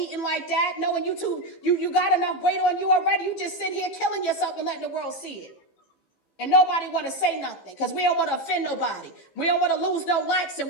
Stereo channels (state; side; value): late; right; 15 ms